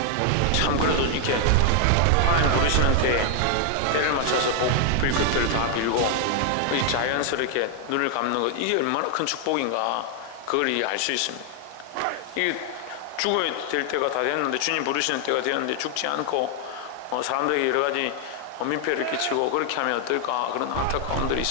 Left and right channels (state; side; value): different; both; correlation 0.00